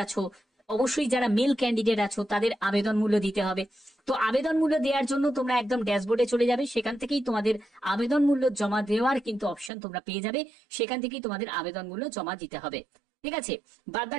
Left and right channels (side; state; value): left; drops out; at 9.7 s